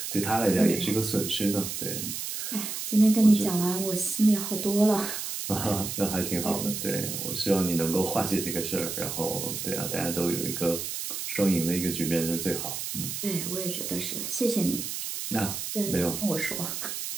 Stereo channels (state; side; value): noise; right; hiss, 5 dB below the sound